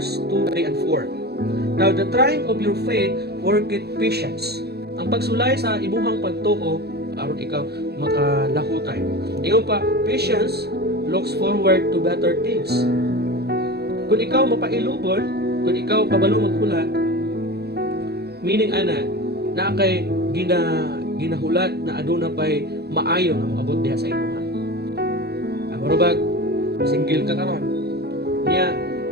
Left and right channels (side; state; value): left; late; 0.47 ms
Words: 2, 3, and 4. Now, the trying of your faith worketh patience. Ang pagsulay sa imuhang pagtuo, aron ikaw makalahutay. Ingon pa, patience looks forward to better things. Kung ikaw mapailubon, kung ikaw kabalo maghulat, meaning na kay ginahulat na aduna pay maayo nga moabot diha sa imuha. Marubag single ka karon. Niya